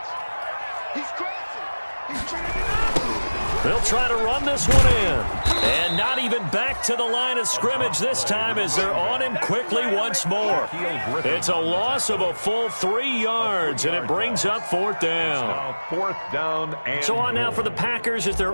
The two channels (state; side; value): inverted; both; correlation -1.00